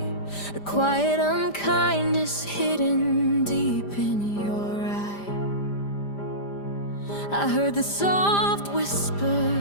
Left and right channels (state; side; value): late; right; 5.0 ms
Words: a quiet unkindness hidden deep in your eye. I heard the soft